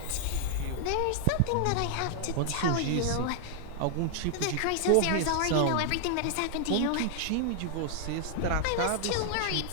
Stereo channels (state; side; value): different; both; correlation 0.00